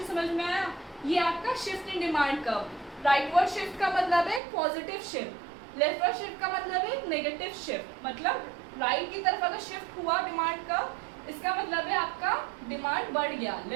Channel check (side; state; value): left; drops out; at 4.4 s